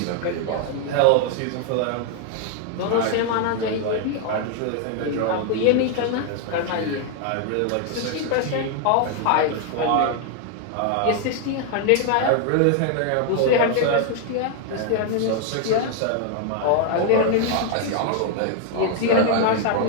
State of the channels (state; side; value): different; both; correlation 0.00